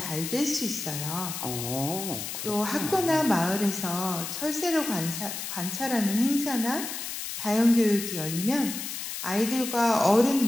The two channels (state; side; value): noise; left; hiss, 6 dB below the sound